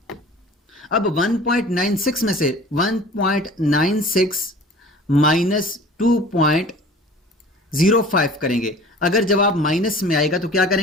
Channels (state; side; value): normal; both; correlation 0.44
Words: अब 1.96 में से 1.96 माइनस 2.05 करेंगे। अगर जवाब माइनस में आएगा तो क्या